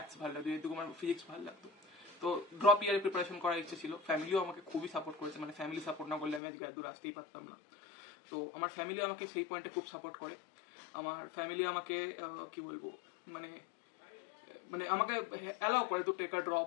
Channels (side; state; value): right; drops out; at 6.4 s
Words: ভালো লাগতো, যেহেতু আমার ফিজিক্স ভালো লাগতো। তো ড্রপ ইয়ারে প্রিপারেশন করার ইচ্ছে ছিল। ফ্যামিলিও আমাকে খুবই সাপোর্ট করেছে, মানে ফ্যামিলি সাপোর্ট না করলে আমি আজকে এত দূর আসতেই পারতাম না। তো আমার ফ্যামিলি আমাকে সেই পয়েন্টে খুব সাপোর্ট করে। আমার ফ্যামিলি আমাকে কি বলবো, মানে আমাকে অ্যালাউ করে তো টেক আ